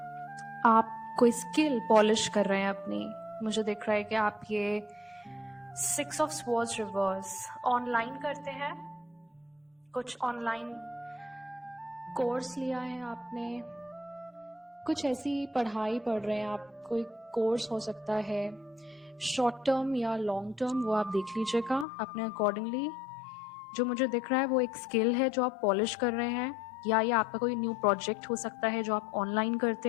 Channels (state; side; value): drops out; right; at 21.9 s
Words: आप कोई स्किल पॉलिश कर रहे हैं अपनी। मुझे दिख रहा है कि आप ये 6 ऑफ स्वॉर्ड्स रिवर्स ऑनलाइन करते हैं, कुछ ऑनलाइन कोर्स लिया है आपने, कुछ ऐसी पढ़ाई पढ़ रहे हैं आप, कोई कोर्स हो सकता है शॉर्ट टर्म या लॉन्ग टर्म, वो आप देख लीजिएगा अपने अकॉर्डिंगली। जो मुझे दिख रहा है वो एक स्किल है जो आप पॉलिश कर रहे हैं, या ये आपका कोई न्यू प्रोजेक्ट हो सकता है जो आप ऑनलाइन